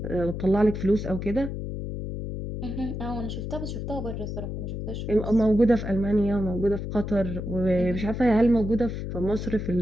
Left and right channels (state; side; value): noise; left; hum, 5 dB below the sound